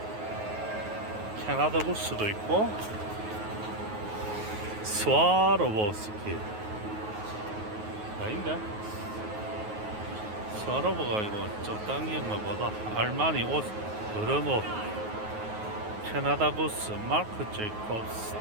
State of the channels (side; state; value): left; late; 9.4 ms